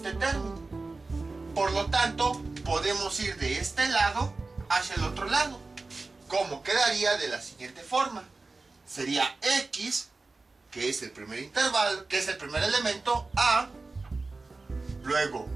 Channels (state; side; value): quieter; left; 3.6 dB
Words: término. Por lo tanto, podemos ir de este lado hacia el otro lado. ¿Cómo quedaría? De la siguiente forma. Sería X, que es el primer intervalo, que es el primer elemento, A, luego